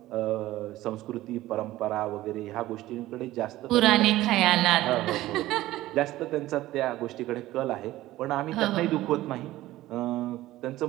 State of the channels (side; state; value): left; quieter; 16.1 dB